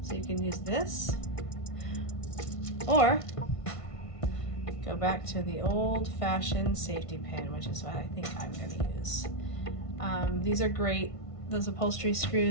So you can use this, or go back to the old-fashioned safety pin, which is what I think I'm going to use. These are great. Those upholstery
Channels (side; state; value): right; late; 1.5 ms